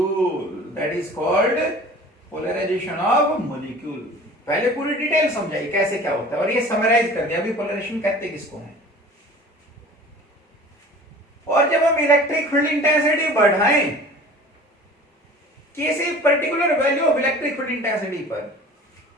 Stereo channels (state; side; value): normal; both; correlation 0.43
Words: That is called polarization of molecule. पहले पूरी detail समझाई कैसे क्या होता है और ये summarise कर दिया अभी पोलराइजेशन कहते किसको है। और जब हम इलेक्ट्रिक फील्ड इंटेंसिटी बढ़ाएं किसी particular value of electric field intensity पर,